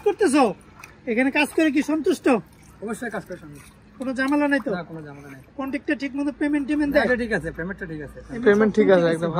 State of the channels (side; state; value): both; identical; correlation 1.00